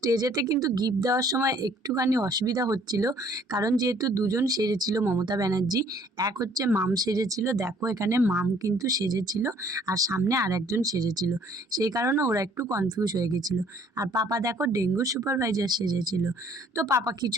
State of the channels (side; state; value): both; normal; correlation 0.59